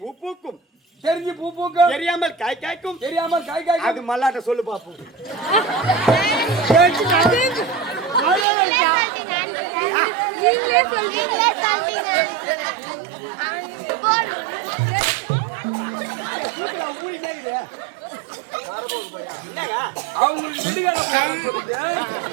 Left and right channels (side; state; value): left; drops out; at 8.5 s